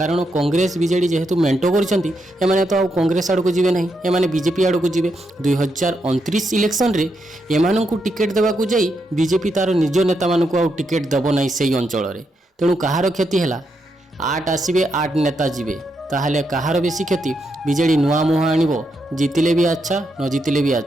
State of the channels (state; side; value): normal; both; correlation 0.81